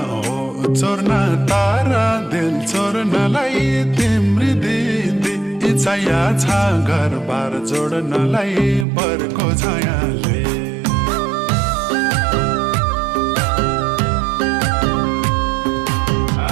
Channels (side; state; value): left; drops out; at 8.8 s